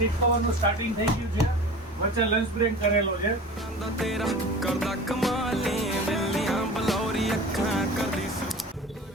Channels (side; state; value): both; normal; correlation 0.38